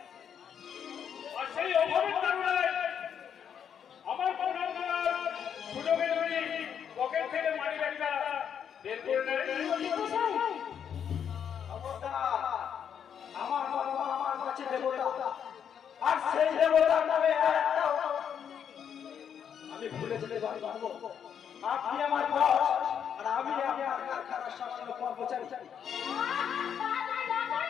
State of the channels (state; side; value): quieter; right; 8.2 dB